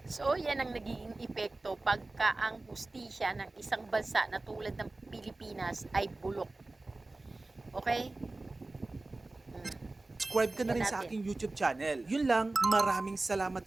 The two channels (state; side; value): quieter; left; 3.1 dB